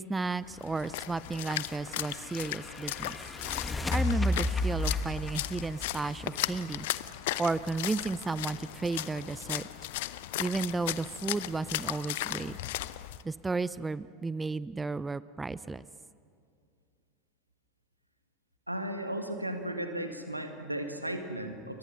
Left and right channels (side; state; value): both; normal; correlation 0.52